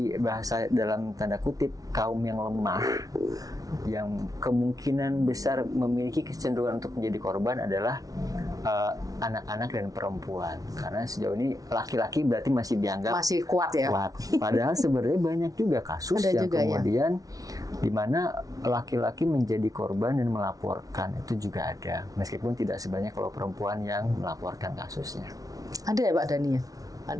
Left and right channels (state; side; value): late; left; 0.18 ms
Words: bahasa dalam tanda kutip kaum yang lemah, yang kemungkinan besar memiliki kecenderungan untuk menjadi korban adalah anak-anak dan perempuan. Karena sejauh ini laki-laki berarti masih dianggap masih kuat ya. Padahal sebenarnya banyak juga kasus yang juga, kemudian di mana laki-laki menjadi korban dan melaporkan, itu juga ada. Meskipun tidak sebanyak kalau perempuan yang melaporkan kasusnya. Ada ya Pak Dhani ya?